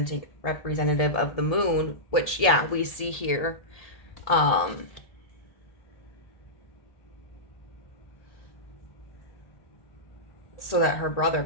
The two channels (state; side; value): late; right; 1.7 ms